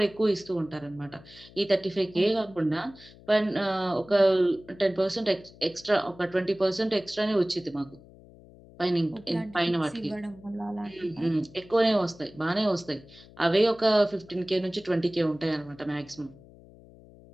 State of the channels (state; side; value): noise; left; hum, 22 dB below the sound